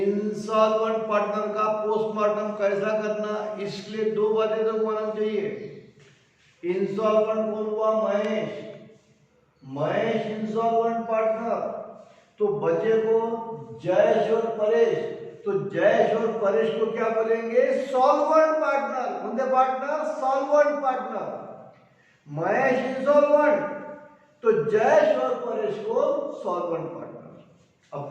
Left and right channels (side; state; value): both; identical; correlation 1.00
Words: पार्टनर का पोस्टमार्टम कैसा करना, इसलिए दो बातें तो मालूम चाहिए। इंसॉल्वेंट कौन हुआ, महेश इंसॉल्वेंट पार्टनर। तो बचे को जयेश और परेश, तो जयेश और परेश को क्या बोलेंगे, सॉल्वेंट पार्टनर। कौन partner, solvent partner. Mahesh insolvent, तो जयेश और परेश को सॉल्वेंट पार्टनर। अब